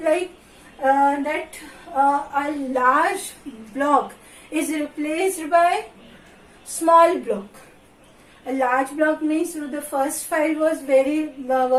like that a large block is replaced by small block. A large block means the first file was very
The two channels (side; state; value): both; identical; correlation 1.00